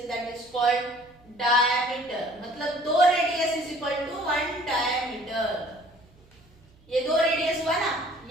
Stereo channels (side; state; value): right; noise; hum, 29 dB below the sound